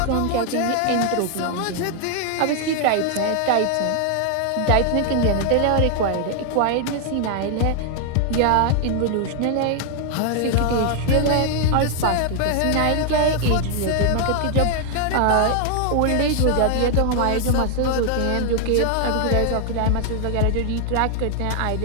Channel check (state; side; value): different; both; correlation 0.00